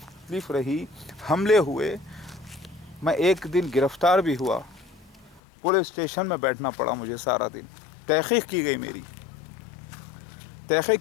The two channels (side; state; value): right; drops out; at 5.4 s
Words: रही, हमले हुए, मैं एक दिन गिरफ़्तार भी हुआ, पुलिस स्टेशन में बैठना पड़ा मुझे सारा दिन। तहक़ीक़ की